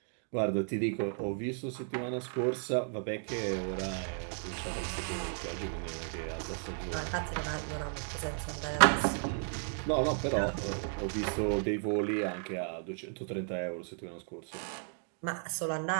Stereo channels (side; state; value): left; silent; 55 dB below the other